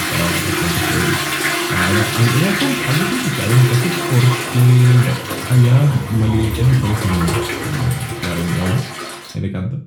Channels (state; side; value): identical; both; correlation 1.00